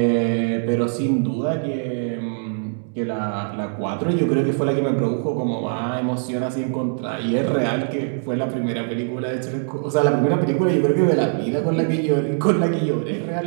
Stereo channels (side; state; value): left; silent; digital silence